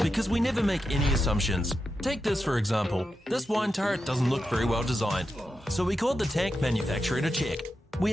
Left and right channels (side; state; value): both; normal; correlation 0.88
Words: we never make any assumptions. Take this for example. This wine turret doesn't look very well designed. So we called the tank manufacturer to check.